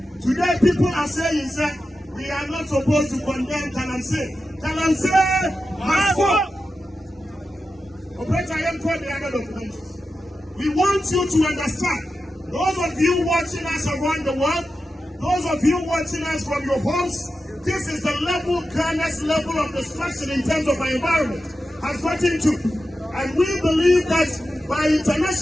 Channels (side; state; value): both; normal; correlation 0.91